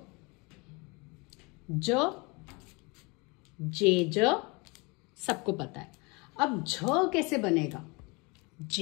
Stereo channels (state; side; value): quieter; right; 28.2 dB